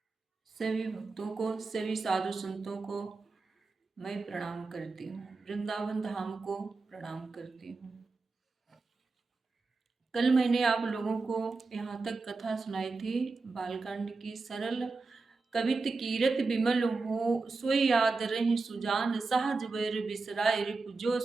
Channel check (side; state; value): left; quieter; 3.9 dB